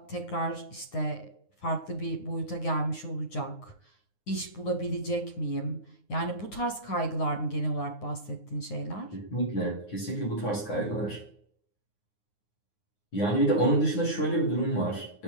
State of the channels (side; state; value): right; late; 9.6 ms